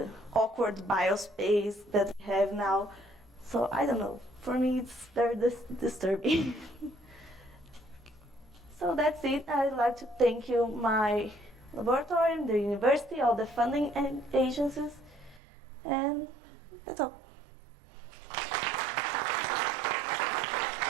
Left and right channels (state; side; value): drops out; left; at 15.4 s